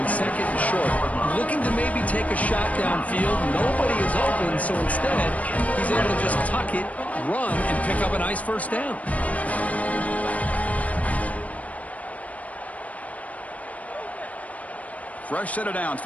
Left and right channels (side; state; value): right; late; 0.069 ms